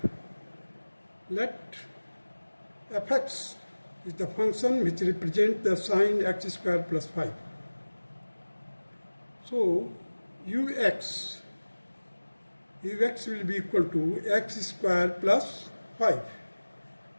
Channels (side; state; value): both; inverted; correlation -1.00